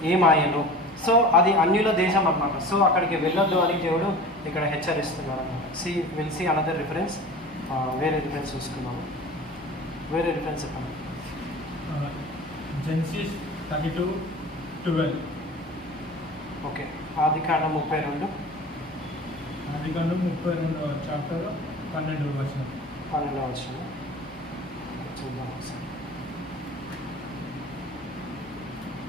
ఏమాయను. సో అది అన్యుల దేశం అన్నమాట. సో అక్కడికి వెళ్ళొద్దు అని దేవుడు ఇక్కడ హెచ్చరిస్తున్నారు అన్నమాట. Will see another reference. వేరే రిఫరెన్స్ చూసుకున్నాము. వేరే రిఫరెన్స్ చెప్పండి. జెనసిస్ 32:12. ఓకే. ఆదికాండం 32. ఆదికాండం 32వ చాప్టర్ 12వ వచనం. 12వ వచనం చూద్దాం ఒకసారి.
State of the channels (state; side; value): noise; left; hum, 27 dB below the sound